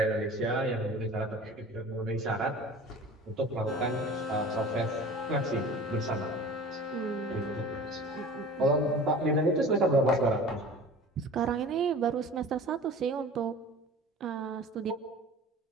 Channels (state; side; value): normal; both; correlation 0.40